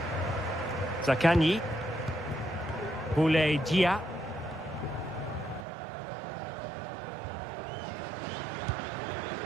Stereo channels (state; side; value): drops out; left; at 5.7 s